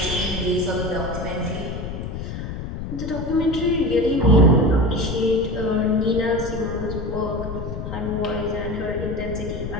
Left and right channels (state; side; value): noise; left; rumble, 6 dB below the sound